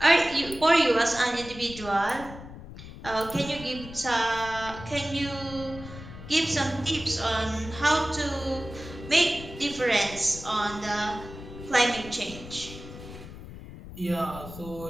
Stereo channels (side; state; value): left; noise; rumble, 14 dB below the sound